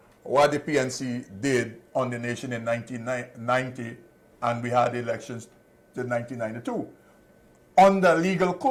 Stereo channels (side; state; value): both; identical; correlation 1.00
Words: what the PNC did on the nation in 1990, and we had elections in 1992 under legal